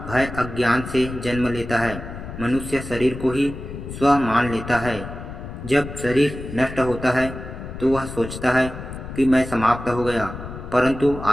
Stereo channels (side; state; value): left; noise; rumble, 10 dB below the sound